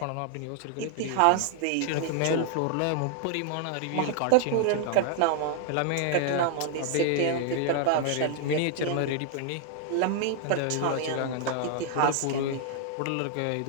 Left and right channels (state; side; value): different; both; correlation 0.00